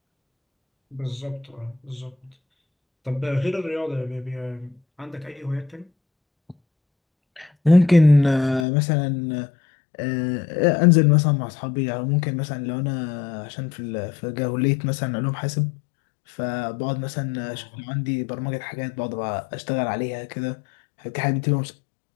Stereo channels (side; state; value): right; drops out; at 8.7 s